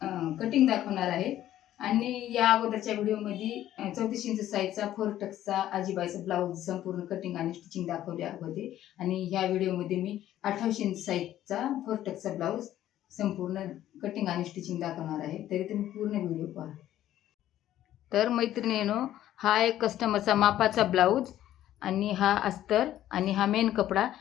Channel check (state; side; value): quieter; right; 12.7 dB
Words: कटिंग दाखवणार आहे। आणि या अगोदरच्या व्हिडिओमध्ये 34 इंच साईजचा 4 टक्सचा आजीबाईचा ब्लाऊज संपूर्ण कटिंग आणि स्टिचिंग दाखवले होते आणि ह्या व्हिडिओमध्ये मी 28 इंच साईजचा 4 टक्सचा ब्लाऊज संपूर्ण कटिंग आणि स्टिचिंग दाखवणार आहे, तरी तुम्ही पूर्ण व्हिडिओ पहा। तर मैत्रिणींनो, हा एक कस्टमरचा मापाचा ब्लाऊज आणि हा अस्तर आणि हा मेन कपडा।